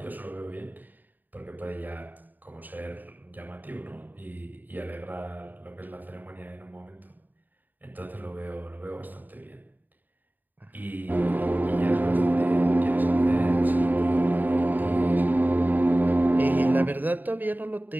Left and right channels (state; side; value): late; left; 0.087 ms